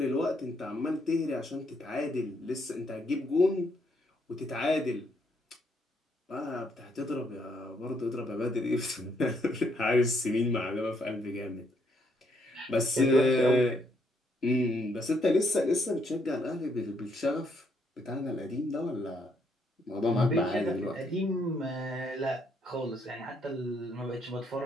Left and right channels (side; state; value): both; normal; correlation 0.72